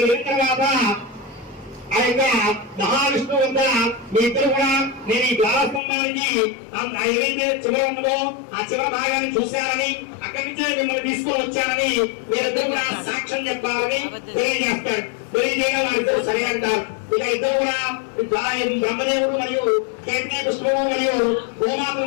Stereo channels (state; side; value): drops out; right; at 5.8 s